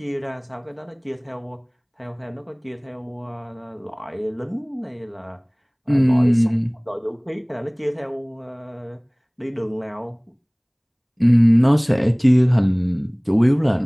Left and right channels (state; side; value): identical; both; correlation 1.00